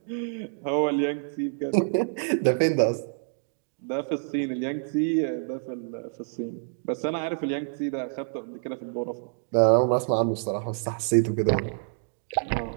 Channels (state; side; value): silent; left; digital silence